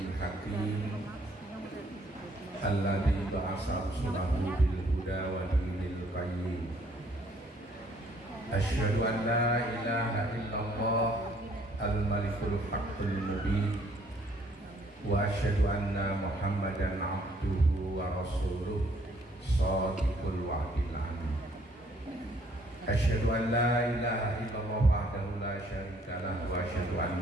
hakim alladzi ba'atsa rasulahu bil huda wa dinil qayyim. Asyhadu an la ilaha illallah al-malikul haqqul mubin wa asyhadu anna Muhammadan abduhu wa rasuluh shadiqul wa'dil amin. Asyhadu an la ilaha illallah wahdahu la syarika lahu wa asyhadu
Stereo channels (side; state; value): both; normal; correlation 0.64